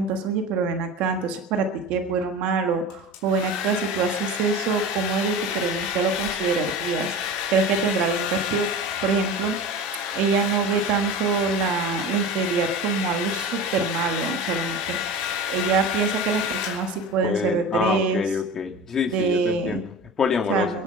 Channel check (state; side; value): normal; both; correlation 0.32